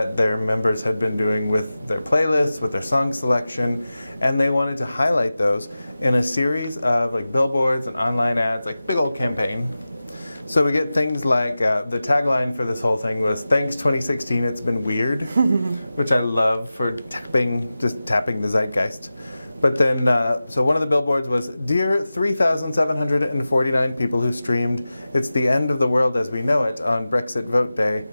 their members had been doing with their playlists, with their song selection, and they wanted to highlight those in a series of like billboards and online ads, like big old campaign. So we get things like, the tagline for this whole thing was, "Thanks 2016, it's been weird," which I love for just tapping the zeitgeist. But then, so one of the billboards was, "Dear 3,749 people who streamed It's the End of the World as We Know It on Brexit Vote Day,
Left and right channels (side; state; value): both; inverted; correlation -0.95